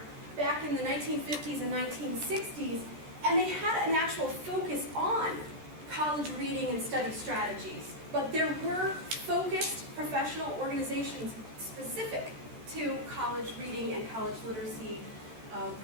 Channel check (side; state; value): left; late; 13 ms